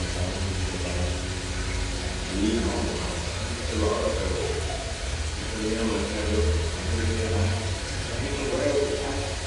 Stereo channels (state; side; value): identical; both; correlation 1.00